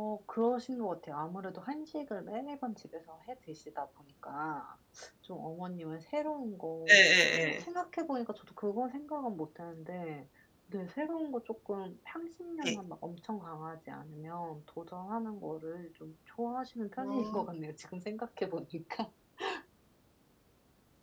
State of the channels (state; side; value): identical; both; correlation 1.00